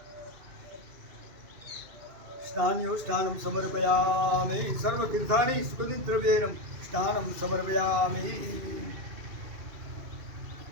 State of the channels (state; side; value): late; left; 2.5 ms